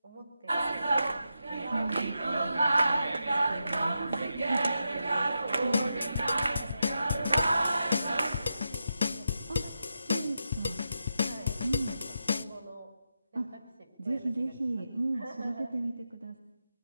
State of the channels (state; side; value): inverted; both; correlation -0.87